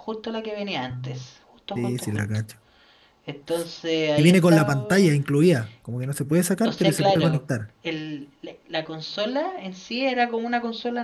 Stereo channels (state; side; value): identical; both; correlation 1.00